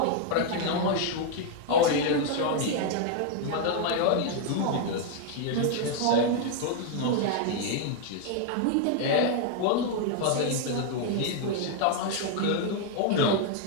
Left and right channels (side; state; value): both; different; correlation 0.00